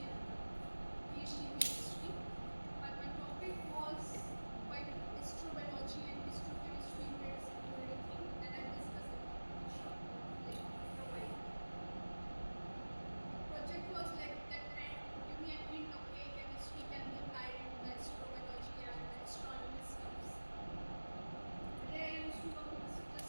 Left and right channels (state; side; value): inverted; both; correlation -1.00